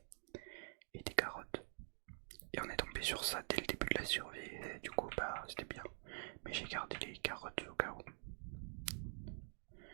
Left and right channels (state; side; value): silent; left; digital silence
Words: et des carottes. Et on est tombé sur ça dès le début de la survie. Et du coup, bah, c'était bien. Mais j'ai gardé les carottes au cas où.